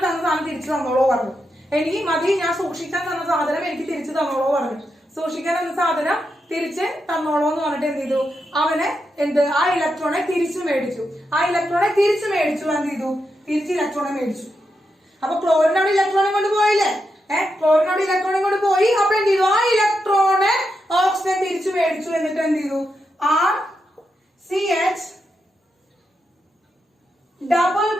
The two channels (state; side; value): normal; both; correlation 0.85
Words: തന്ന സാധനം തിരിച്ചു തന്നോളോ പറഞ്ഞു. എനിക്ക് മതി, ഞാൻ സൂക്ഷിക്കാൻ തന്ന സാധനം എനിക്ക് തിരിച്ചു തന്നോളോ പറഞ്ഞു. സൂക്ഷിക്കാൻ തന്ന സാധനം തിരിച്ച് തന്നോളോ എന്ന് പറഞ്ഞിട്ട് എന്ത് ചെയ്തു, അവന് ആ ഇലക്ട്രോണെ തിരിച്ചു മേടിച്ചു. എന്ത് ചെയ്തു, തിരിച്ച് ഇലക്ട്രോണെ മേടിച്ചു. അപ്പൊ ക്ലോറിനോട് ഇലക്ട്രോണെ കൊണ്ട് പോയില്ലേ, അപ്പൊ എന്ത് ചെയ്തു, ആ ഇലക്ട്രോണെ ഓക്സിജൻ തിരിച്ചു മേടിച്ചു. എന്നിട്ട് എന്ത് ചെയ്തു, RCH ഡബിൾ